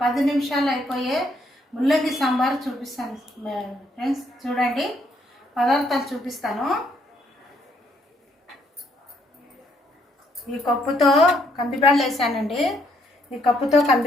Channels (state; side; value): normal; both; correlation 0.71